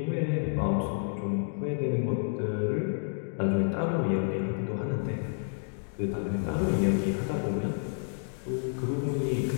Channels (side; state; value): right; silent; digital silence